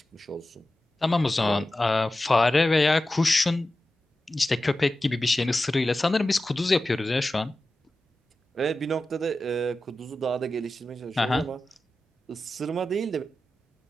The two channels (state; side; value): normal; both; correlation 0.93